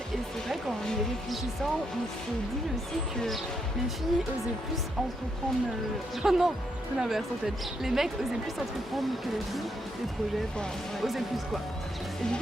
Et c'est vrai qu'en y réfléchissant, on s'est dit aussi que les filles osaient plus entreprendre... Oh non, l'inverse en fait. Les mecs osaient plus entreprendre que les filles, des projets, osaient plus quoi. Et du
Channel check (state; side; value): normal; both; correlation 0.78